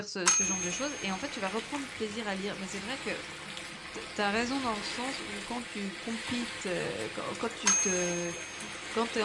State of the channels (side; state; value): both; identical; correlation 1.00